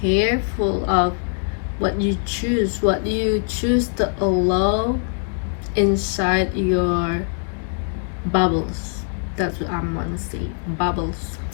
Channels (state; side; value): silent; right; 64 dB below the other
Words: careful of what you choose to allow inside your bubbles. That's what I'm gonna say, bubbles.